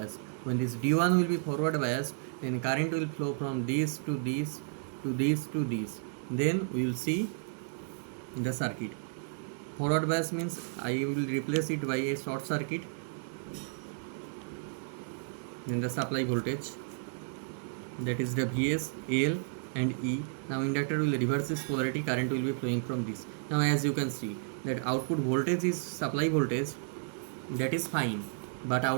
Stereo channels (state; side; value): silent; left; 56 dB below the other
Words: When this D1 will be forward biased, then current will flow from this to this to this to this. Then we will see the circuit. Forward bias means I will replace it by a short circuit. Then the supply voltage, that is the Vs, L and E. Now inductor will reverse its polarity, current will be flowing from this. Now as you can see that output voltage is supply voltage, that is fine, but